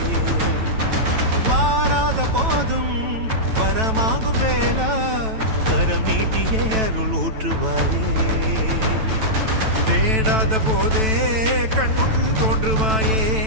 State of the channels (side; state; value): left; late; 9.1 ms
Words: வாராத போதும் வரமாகும் வேளா கரம் நீட்டியே அருள் ஊற்றுவாயே தேடாத போதே கண்முன் தோன்றுவாயே